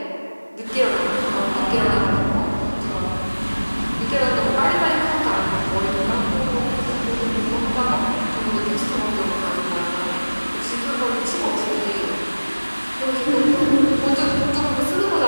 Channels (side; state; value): both; inverted; correlation -1.00